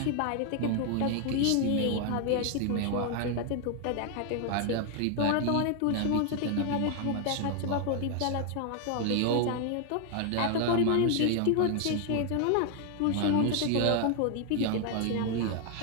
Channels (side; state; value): both; different; correlation 0.00